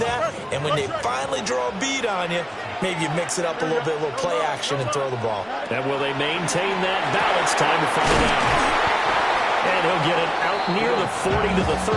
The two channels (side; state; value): both; identical; correlation 1.00